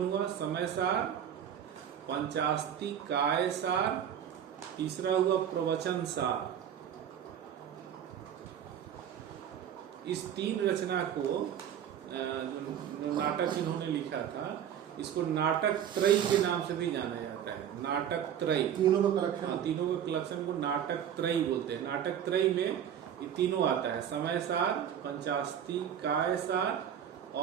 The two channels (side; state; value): left; quieter; 9.4 dB